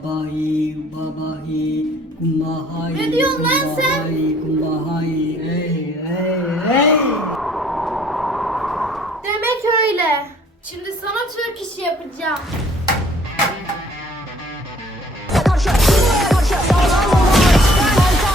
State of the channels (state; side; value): normal; both; correlation 0.58